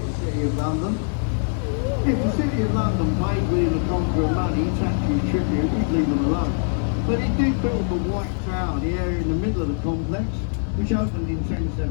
the city of London. If the city of London paid William the Conqueror money, tax and tribute, we'd leave them alone. But he did build the White Tower, the area in the middle of the complex, which opened in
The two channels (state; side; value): silent; right; 63 dB below the other